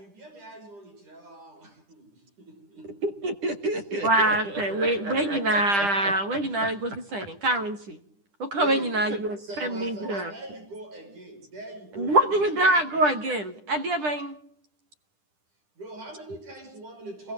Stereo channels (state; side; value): late; left; 10 ms